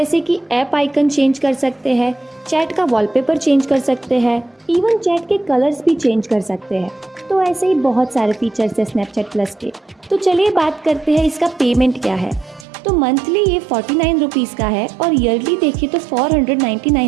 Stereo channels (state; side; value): drops out; left; at 12.7 s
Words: कि ऐप आइकन चेंज कर सकते हैं, चैट का वॉलपेपर चेंज कर सकते हैं, इवन चैट के कलर्स भी चेंज कर सकते हैं। तो ऐसे ही बहुत सारे फीचर्स है स्नैपचैट प्लस के। तो चलिए बात करते हैं इसका पेमेंट क्या है। तो मंथली ये 49 रुपीज़ का है और ईयरली देखिए तो